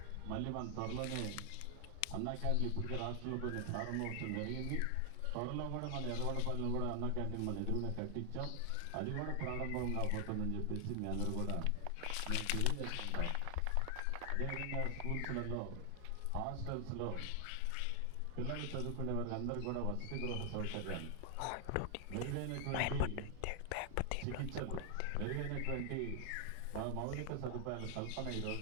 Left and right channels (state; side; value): different; both; correlation 0.00